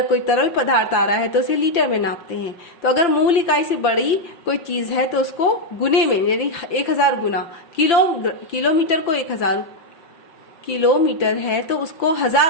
कोई तरल पदार्थ आ रहा है तो उसे लीटर में नापते हैं। तो अगर मूल इकाई से बड़ी कोई चीज है तो उसको गुने में, यानी 1000 गुना, किलोमीटर को 1000 किलोमीटर है तो उसको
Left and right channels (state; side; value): late; right; 5.9 ms